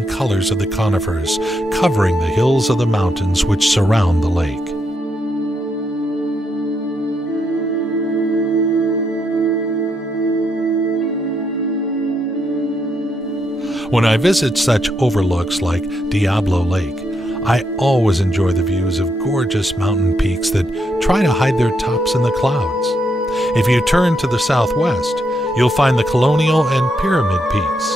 colors of the conifers covering the hills of the mountains which surround the lake. When I visit such overlooks like Diablo Lake, I always enjoy the views of gorgeous mountain peaks that try to hide their tops in the clouds. If you turn to the southwest, you'll find the Colonial and Pyramid Peaks,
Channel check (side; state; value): both; normal; correlation 0.79